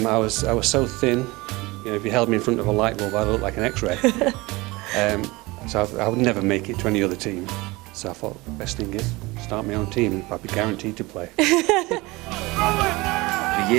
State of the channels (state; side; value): quieter; left; 22.6 dB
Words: I was so thin, if you held me in front of a light bulb I'd look like an X-ray. So I would never make it to any other team. So I thought the best thing is start my own team and I'd be guaranteed to play. The